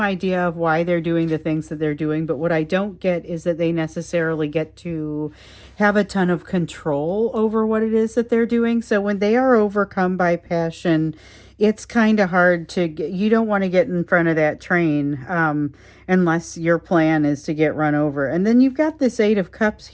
idea of why they're doing the things that they're doing, but what I don't get is that they necessarily get to have a ton of control over what it is that they're doing. So when they are overcome by passion, it's kind of hard to get, you don't want to get in front of that train unless your plan is to get run over. And then you've got this Eight of Cups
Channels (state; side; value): identical; both; correlation 1.00